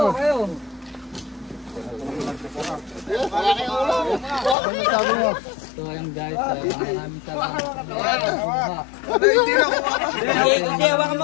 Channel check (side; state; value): right; drops out; at 4.5 s